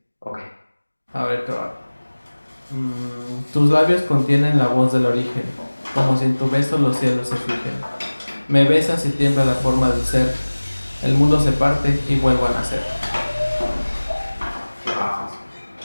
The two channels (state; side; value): inverted; both; correlation -1.00